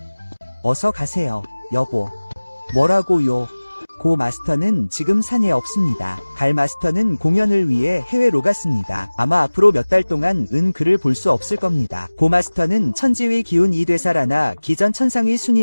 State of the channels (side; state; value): both; inverted; correlation -1.00